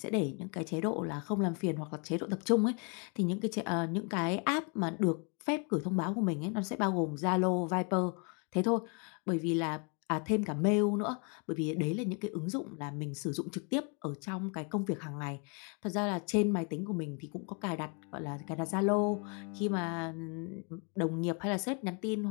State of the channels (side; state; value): right; quieter; 36.4 dB